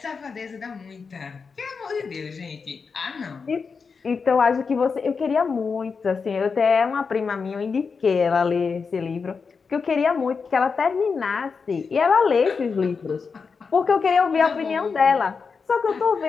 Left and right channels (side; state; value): right; quieter; 5.2 dB